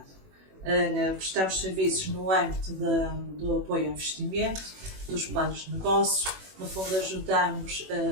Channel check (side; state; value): left; late; 21 ms